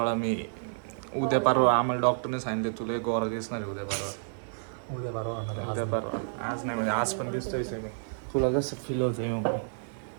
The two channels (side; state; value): left; silent; digital silence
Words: मी उद्या परवा आम्हाला डॉक्टरने सांगितले तुला गोरा दिसणार आहे उद्या परवा. आज नाही म्हणजे आज पण दिसतोय मी. तुला कसं फील होतंय